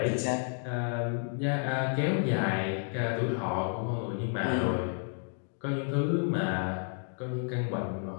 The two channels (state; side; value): silent; right; 57 dB below the other